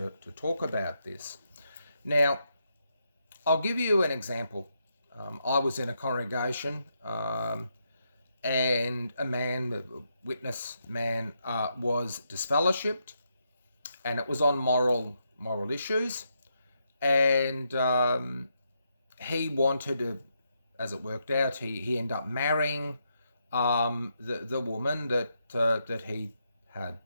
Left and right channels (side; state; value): both; inverted; correlation -0.81